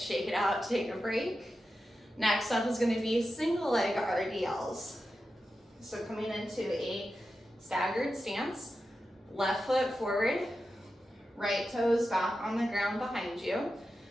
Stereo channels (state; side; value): normal; both; correlation 0.91